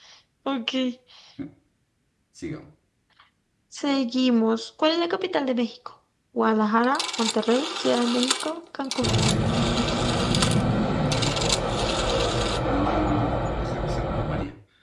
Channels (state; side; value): identical; both; correlation 1.00